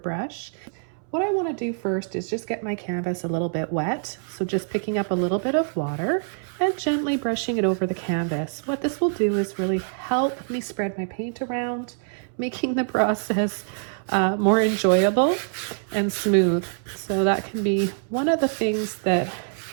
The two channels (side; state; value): left; silent; 62 dB below the other